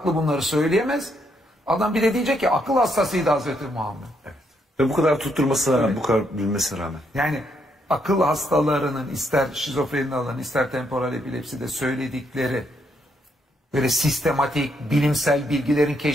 bunları söyleyemez. Adam bir de diyecek ki akıl hastasıydı Hazreti Muhammed. Evet. Ve bu kadar tutturmasına rağmen, bu kadar bilmesine rağmen. Yani akıl hastalarının ister şizofreni alanı ister temporal epilepside söyledikleri böyle sistematik, bilimsel bilgilerin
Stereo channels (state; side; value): normal; both; correlation 0.75